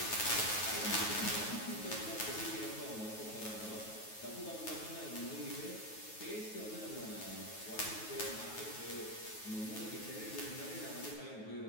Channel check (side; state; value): right; late; 9.3 ms